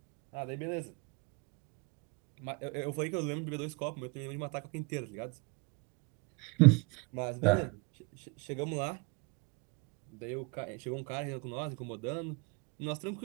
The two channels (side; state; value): left; quieter; 30.0 dB